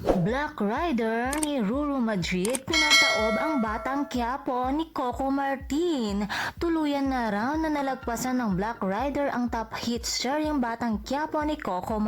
Black Rider ni Ruru Madrid, pinataob ang Batang Quiapo ni Coco Martin. Tuluyan na raw na nalagpasan ng Black Rider ang top hit seryeng Batang Quiapo ni Coco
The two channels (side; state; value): both; identical; correlation 1.00